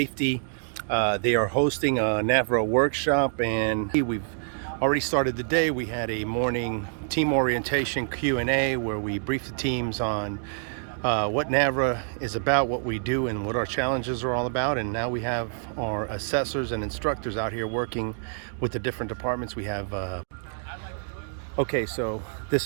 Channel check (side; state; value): left; silent; digital silence